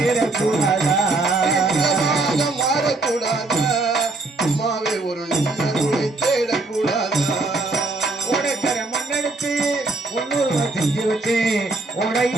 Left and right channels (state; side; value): quieter; left; 3.2 dB